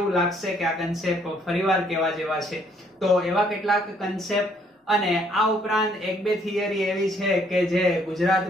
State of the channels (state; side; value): normal; both; correlation 0.66